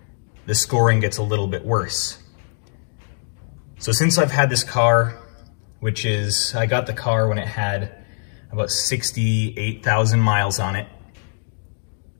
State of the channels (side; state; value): right; silent; digital silence